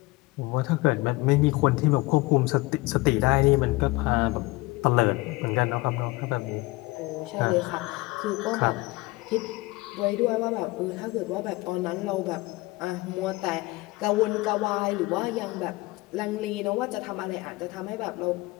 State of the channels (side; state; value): right; quieter; 21.8 dB